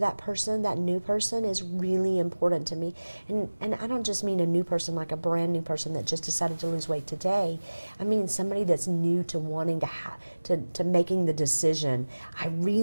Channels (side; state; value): both; inverted; correlation -1.00